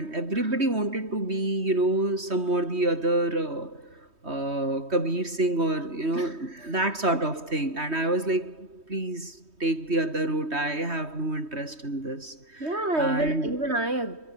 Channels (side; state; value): left; late; 3.2 ms